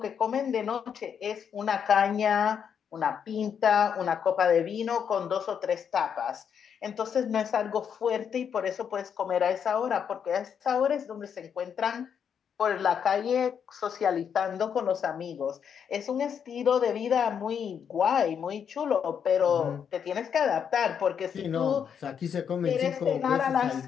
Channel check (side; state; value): right; quieter; 7.6 dB